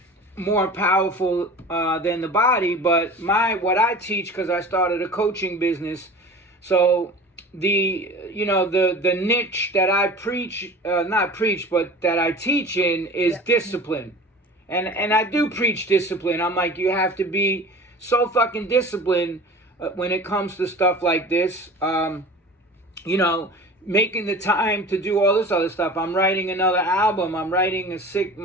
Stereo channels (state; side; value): normal; both; correlation 0.39